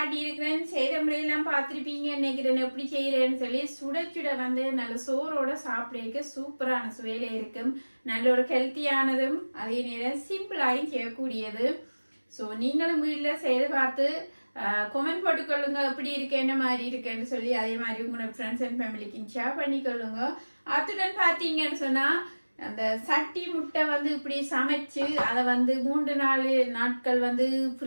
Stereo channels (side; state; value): both; inverted; correlation -1.00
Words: இருக்கிறேன். செய்த முறையெல்லாம் பார்த்திருப்பீங்க நினைக்கிறேன். எப்படி செய்யறேன்னு சொல்லி சுட சுட வந்து நல்ல சோறோட சாப்பிட சூப்பரான சுவையில இருக்கும். நல்ல ஒரு ஹெல்த்தியானதும் அதே நேரம் சிம்பிளாயும் செய்யக்கூடியது. ஸோ நீங்களும் வீட்டுல செய்து பார்த்து கமெண்ட் போட்டுக்கொள்ளுங்க எப்படி இருக்கு, என்ன மாதிரி இருக்குன்னு சொல்லி. அதே மாதிரி உங்களோட ஃப்ரெண்ட்ஸ் அண்ட் ஃபேமிலிக்கு ஷேர் பண்ணிக்கொள்ளுங்க. அத்துடன் பாத்தீங்கன்னு சொன்னா அந்த சட்டி முட்டை வந்து இப்படி சமைச்சு அதை வந்து 3-4 நாட்கள் வந்து